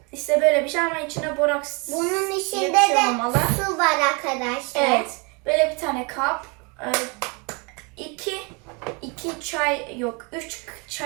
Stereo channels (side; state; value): left; quieter; 31.3 dB